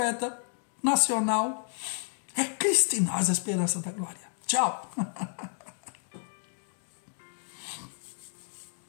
nacional. É Cristo em nós a esperança da glória. Tchau.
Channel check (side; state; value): right; silent; 57 dB below the other